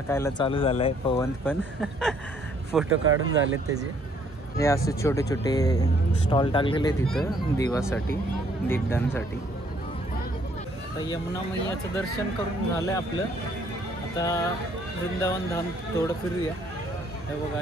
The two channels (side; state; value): both; normal; correlation 0.65